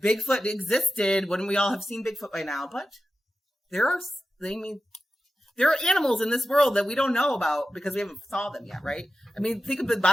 Bigfoot existed, wouldn't we all have seen Bigfoot by now? But there are animals in this world that we don't know about because we haven't saw them yet, right? I mean, think of the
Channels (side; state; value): both; normal; correlation 0.93